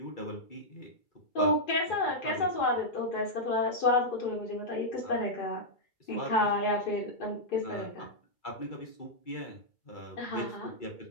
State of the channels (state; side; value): late; right; 2.3 ms